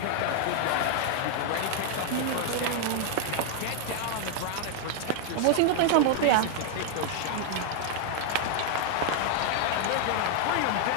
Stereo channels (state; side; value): different; both; correlation 0.00